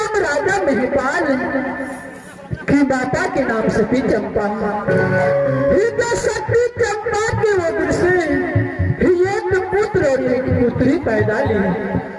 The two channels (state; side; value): identical; both; correlation 1.00